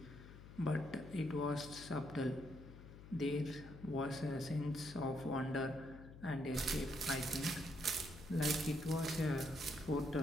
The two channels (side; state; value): left; noise; hum, 15 dB below the sound